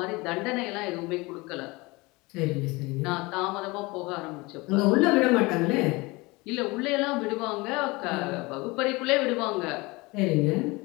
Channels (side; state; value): right; quieter; 23.8 dB